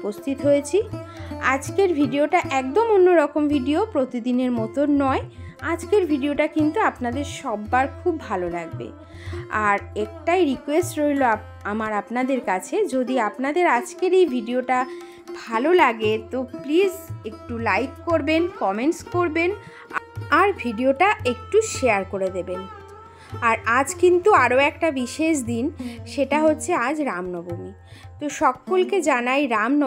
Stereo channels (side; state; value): both; identical; correlation 1.00